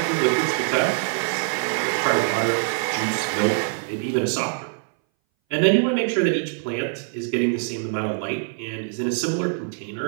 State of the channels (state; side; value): silent; left; 60 dB below the other